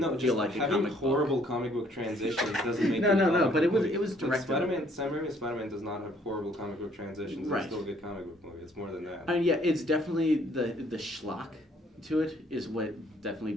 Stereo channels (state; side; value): normal; both; correlation 0.63